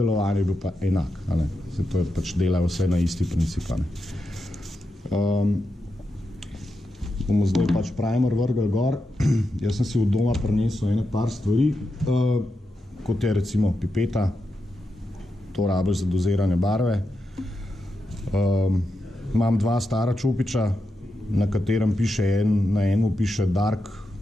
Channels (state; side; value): normal; both; correlation 0.87